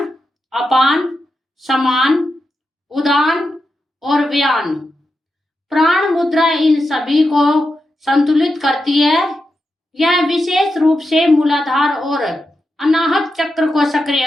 अपान, समान, उदान और व्यान। प्राण मुद्रा इन सभी को संतुलित करती है। यह विशेष रूप से मूलाधार और अनाहत चक्र को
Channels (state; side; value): normal; both; correlation 0.88